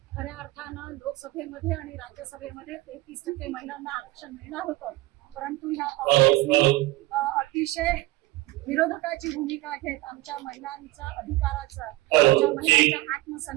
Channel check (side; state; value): left; quieter; 19.0 dB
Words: खऱ्या अर्थानं लोकसभेमध्ये आणि राज्यसभेमध्ये 33% महिलांना आरक्षण मिळणार होतं, परंतु ह्या काँग्रेसने अतिशय विरोधकाची भूमिका घेत आमच्या महिलांच्या अधिकाराचा आमच्या महिलांच्या